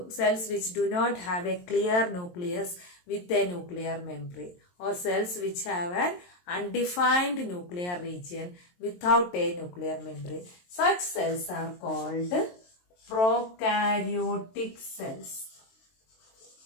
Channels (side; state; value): right; late; 23 ms